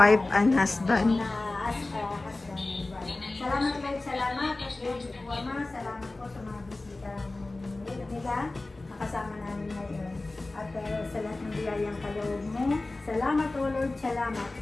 and husband. Husband. Salamat Lord, salamat. At Lord, Ama, salamat po sa mga bisita nila. Nakasama namin ngayon. At sa lahat ng biyayang kaloob mo. Salamat o Lord, salamat.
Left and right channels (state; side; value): quieter; right; 3.0 dB